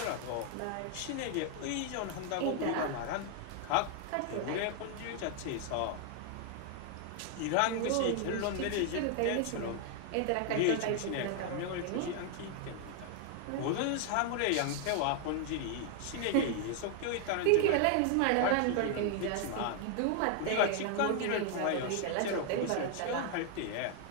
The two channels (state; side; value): different; both; correlation 0.00